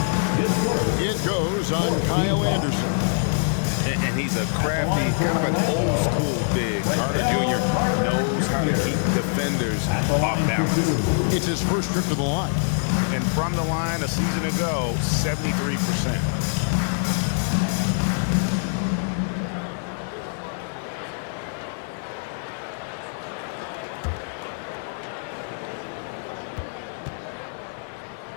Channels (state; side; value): silent; right; digital silence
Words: It goes on Kyle Anderson. And he's a crafty, kind of an old school big. Carter Jr. knows how to keep defenders off balance. It's his first trip to the line. And from the line a season ago, 73%.